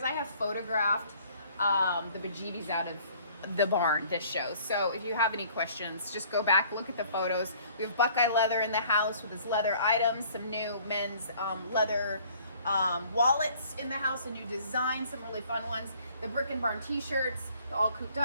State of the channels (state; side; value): inverted; both; correlation -0.56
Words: I have photographed the bejeebies out of the barn this show. So if you have any questions, just go back, look at the photos. We have Buckeye leather in the house with his leather items, some new men's leather wallets in the house, a new design, some really fun ones. The Brick and Barn t-shirts, the all cooped